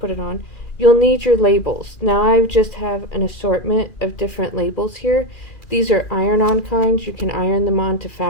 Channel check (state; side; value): late; right; 2.4 ms